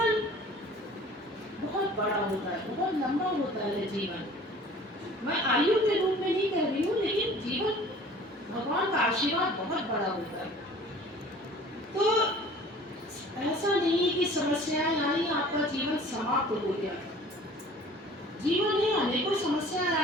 बहुत बड़ा होता है, बहुत लंबा होता है जीवन। मैं आयु के रूप में नहीं कह रही हूँ, लेकिन जीवन भगवान का आशीर्वाद बहुत बड़ा होता है। तो ऐसा नहीं कि समस्याएं आई आपका जीवन समाप्त हो गया। जीवन में अनेकों समस्याएं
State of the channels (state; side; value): normal; both; correlation 0.47